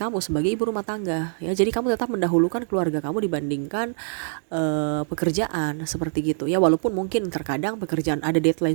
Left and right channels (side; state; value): left; silent; 62 dB below the other